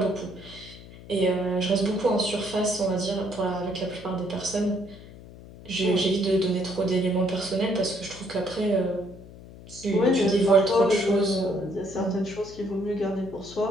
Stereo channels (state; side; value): noise; left; hum, 17 dB below the sound